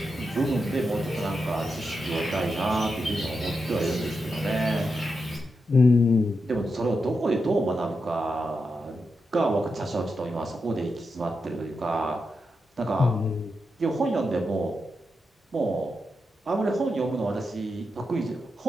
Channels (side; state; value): both; normal; correlation 0.87